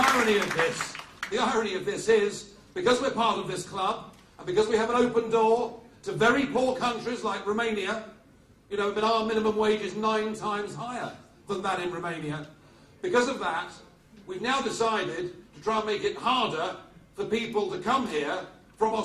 irony of this is, because we're part of this club, and because we have an open door to very poor countries like Romania, but our minimum wage is 9 times higher than that in Romania. Because of that, we've now decided to try and make it harder for people to come here from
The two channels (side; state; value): both; identical; correlation 1.00